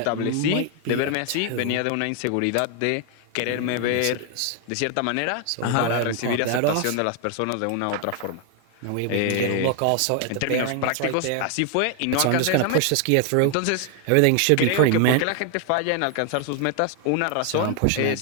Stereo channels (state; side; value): different; both; correlation 0.00